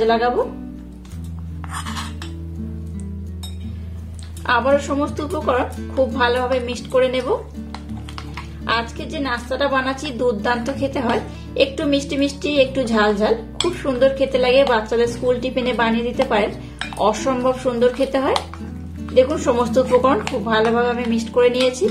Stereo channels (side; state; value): both; identical; correlation 1.00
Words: লাগাবো। আবারও সমস্ত উপকরণ খুব ভালোভাবে মিক্সড করে নেব। আজকে যে নাস্তাটা বানাচ্ছি দুর্দান্ত খেতে হয়, একটু মিষ্টি মিষ্টি একটু ঝাল ঝাল, খুব সুন্দর খেতে লাগে। বাচ্চাদের স্কুল টিফিনে বানিয়ে দিতে পারেন, অসম্ভব সুন্দর খেতে হয়। দেখুন সমস্ত উপকরণ খুব ভালোভাবে আমি মিক্সড করে নিয়েছি।